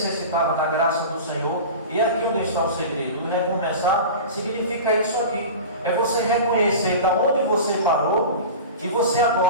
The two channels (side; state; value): both; inverted; correlation -0.32